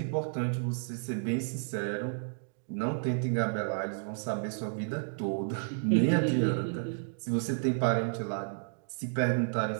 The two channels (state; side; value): silent; left; digital silence